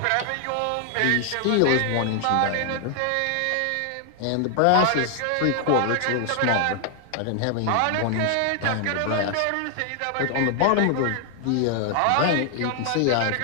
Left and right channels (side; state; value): both; different; correlation 0.00